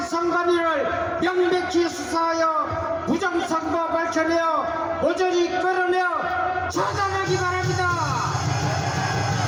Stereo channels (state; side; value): identical; both; correlation 1.00